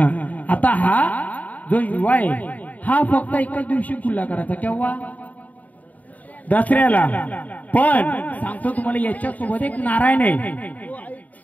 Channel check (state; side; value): late; right; 0.074 ms